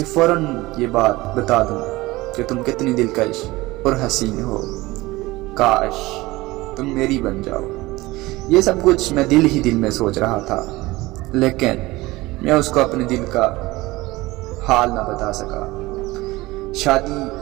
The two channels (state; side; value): quieter; left; 20.0 dB